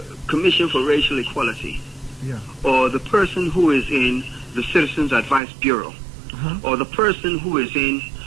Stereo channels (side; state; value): left; drops out; at 5.4 s